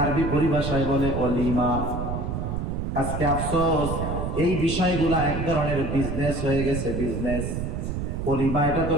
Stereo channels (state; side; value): noise; right; rumble, 3 dB below the sound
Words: আরবি পরিভাষায় বলে অলিমা। আজকে আফসোস, এই বিষয়গুলা এক ধরনের বিজনেস হয়ে গেছে, বিজনেস। অলিমা এটা তো